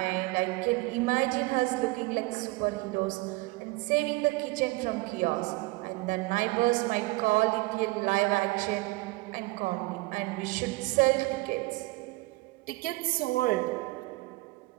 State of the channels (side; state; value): left; quieter; 22.8 dB